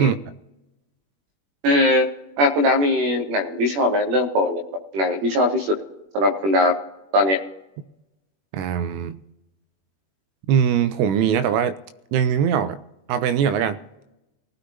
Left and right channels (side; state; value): left; late; 21 ms